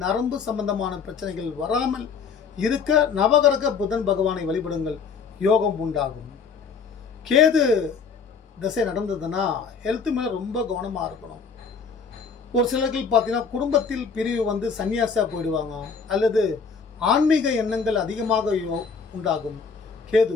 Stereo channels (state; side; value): quieter; right; 5.6 dB